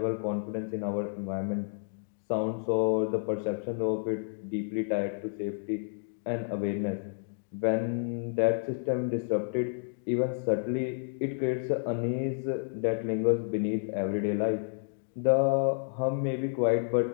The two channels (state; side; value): silent; right; digital silence